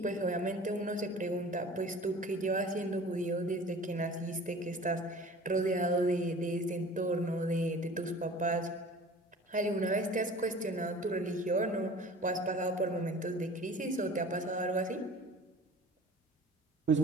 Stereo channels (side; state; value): both; normal; correlation 0.43